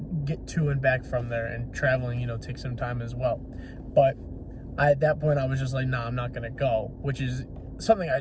get to and back from there, and traveling, takes some time as well. But at that point, I was just like, nah, I'm not going to go, which is something I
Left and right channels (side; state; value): both; identical; correlation 1.00